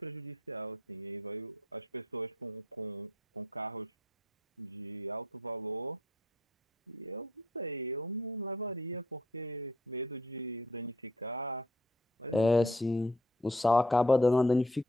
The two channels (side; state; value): both; normal; correlation 0.65